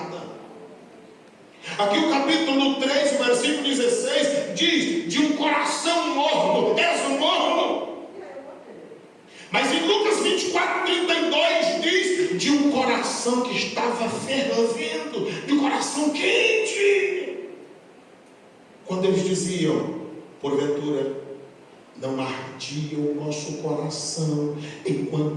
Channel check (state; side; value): identical; both; correlation 1.00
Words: Aqui o capítulo 3, versículo 16 diz: de um coração morno, és um morno. Mas em Lucas 24:32 diz: de um coração que estava fervendo, de um coração quente. Quando eles diziam: porventura não ardia o nosso coração